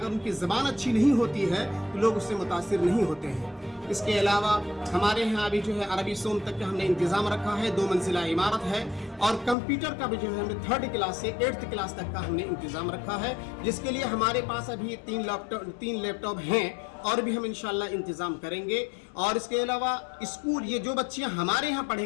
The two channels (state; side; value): drops out; right; at 9.6 s